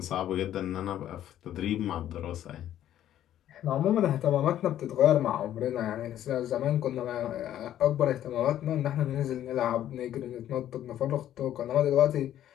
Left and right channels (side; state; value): right; quieter; 11.7 dB